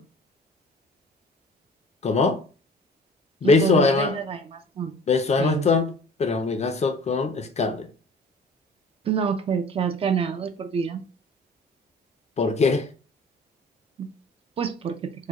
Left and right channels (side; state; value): both; normal; correlation 0.46